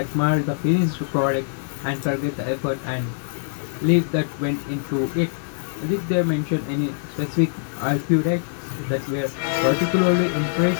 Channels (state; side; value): silent; right; digital silence